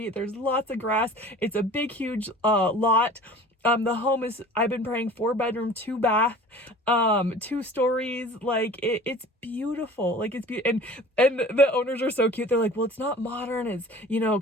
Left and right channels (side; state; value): both; normal; correlation 0.43